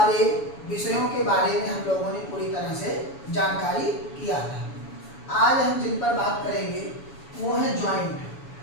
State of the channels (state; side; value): late; right; 7.1 ms